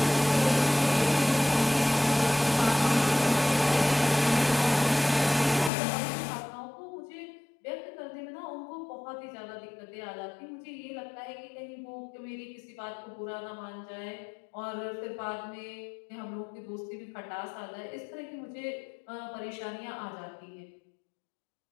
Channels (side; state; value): right; drops out; at 5.7 s